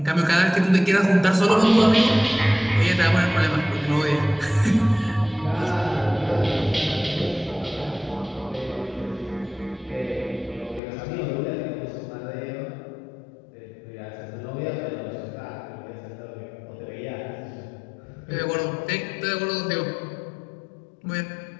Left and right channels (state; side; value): drops out; right; at 10.8 s